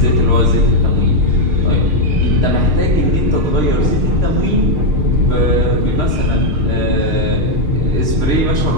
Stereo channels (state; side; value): late; left; 6.5 ms